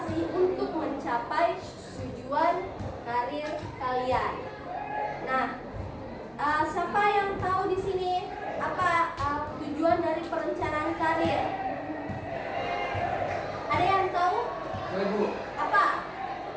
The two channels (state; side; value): identical; both; correlation 1.00